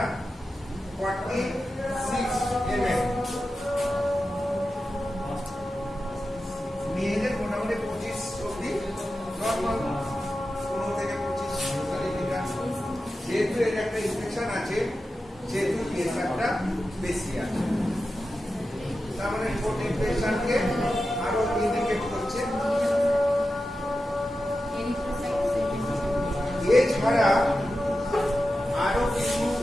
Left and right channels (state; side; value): normal; both; correlation 0.92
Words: 46 ml, মেয়েদের মোটামুটি 25 অব্দি নর্মাল, 15 থেকে 25 লিটার। যেহেতু এর একটা ইনফেকশন আছে, যেহেতু ইএসআরটা বেশি আছে, তার মানে ঠোঁট ইনফেকশনকে আরো ইন্ডিকেট করছে। এছাড়া আরো কিছু